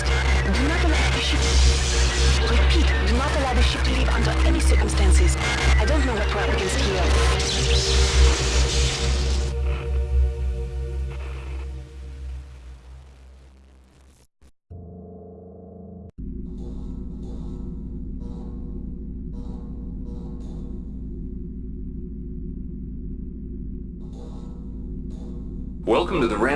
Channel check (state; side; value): identical; both; correlation 1.00